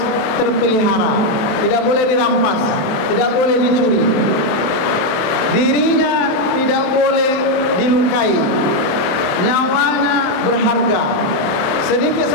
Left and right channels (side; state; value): right; late; 27 ms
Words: terpelihara, tidak boleh dirampas, tidak boleh dicuri. Dirinya tidak boleh dilukai, nyawanya berharga. Sedikit